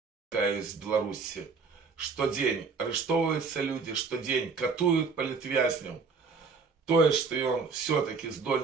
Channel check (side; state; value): left; quieter; 4.9 dB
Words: такая из Беларуси, что день арестовываются люди, что день катуют политвязням, то, что он все-таки